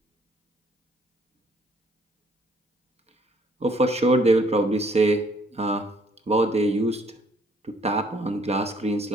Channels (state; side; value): normal; both; correlation 0.63